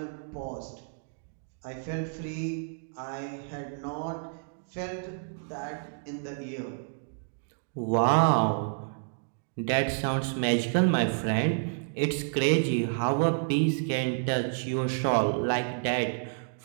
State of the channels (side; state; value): left; silent; digital silence